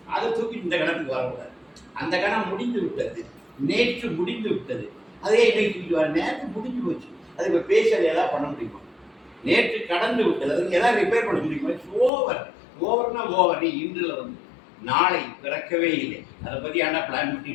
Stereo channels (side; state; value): right; drops out; at 12.1 s